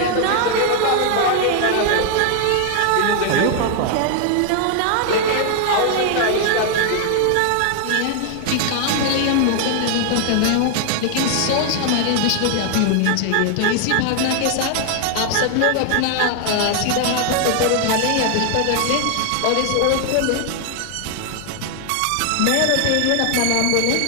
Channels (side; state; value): both; different; correlation 0.00